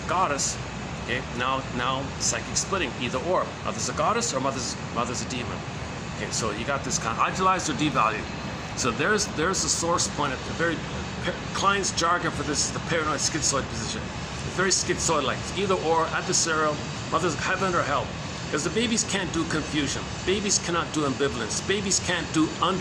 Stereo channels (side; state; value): both; identical; correlation 1.00